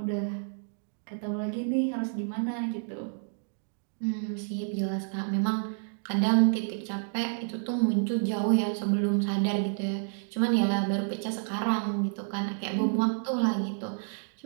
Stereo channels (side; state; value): left; silent; digital silence